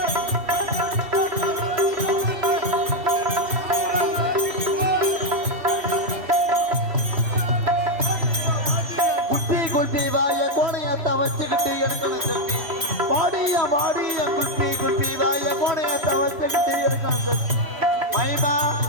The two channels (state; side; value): late; left; 3.1 ms